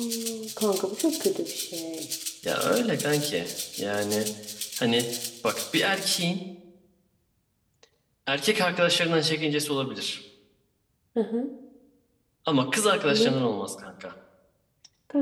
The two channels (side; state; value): both; identical; correlation 1.00